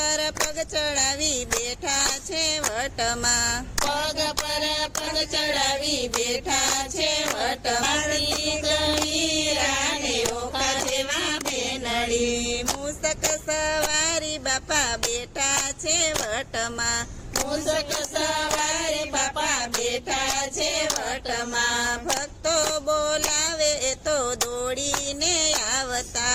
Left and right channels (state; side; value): identical; both; correlation 1.00